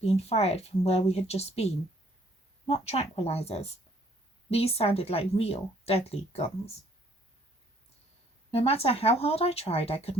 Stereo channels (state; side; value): normal; both; correlation 0.62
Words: fired from where we had just been. Not tranquilizers. These sounded like real, deadly guns. No matter how hard I tried, I could